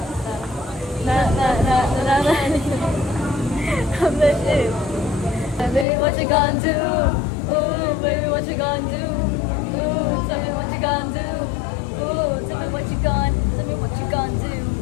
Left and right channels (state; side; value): drops out; right; at 5.9 s